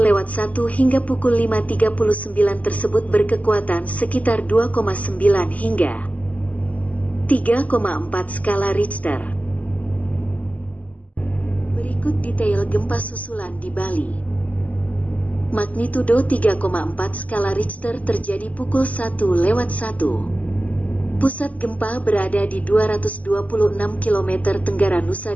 hingga pukul 5.39 tersebut berkekuatan sekitar 2,9 hingga 3,4 skala Richter. Berikut detail gempa susulan di Bali. Magnitudo 3,4 skala Richter terjadi pukul 1:01. Pusat gempa berada di 226 km tenggara Nusa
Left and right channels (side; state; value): right; late; 0.073 ms